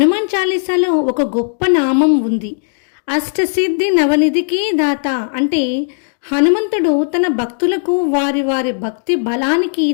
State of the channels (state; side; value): silent; right; digital silence